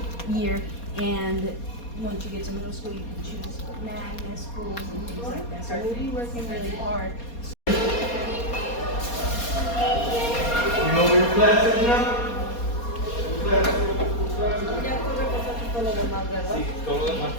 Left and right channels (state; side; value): late; right; 4.2 ms